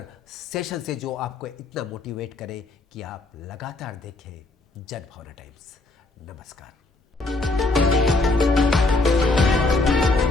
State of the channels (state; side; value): quieter; right; 3.1 dB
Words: सेशन से जो आपको इतना मोटिवेट करे कि आप लगातार देखें जनभावना टाइम्स। नमस्कार।